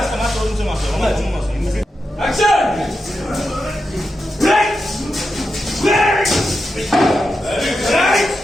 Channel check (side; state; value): both; normal; correlation 0.88